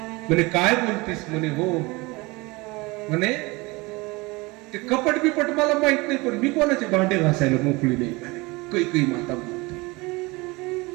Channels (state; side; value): quieter; left; 24.1 dB